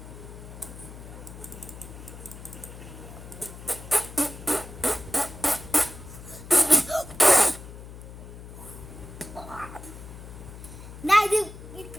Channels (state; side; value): noise; left; hum, 14 dB below the sound